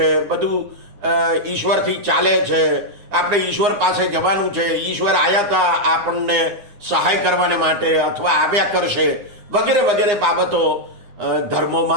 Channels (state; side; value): late; left; 9.8 ms